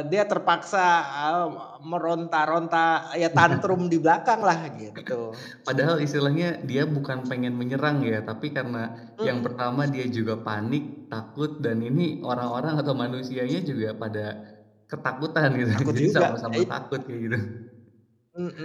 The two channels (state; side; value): identical; both; correlation 1.00